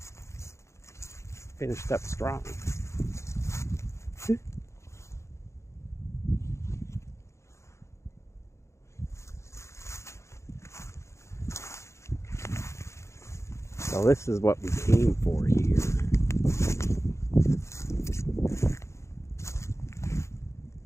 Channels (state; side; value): late; right; 0.14 ms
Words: Finished up strong. So this is what we came for here.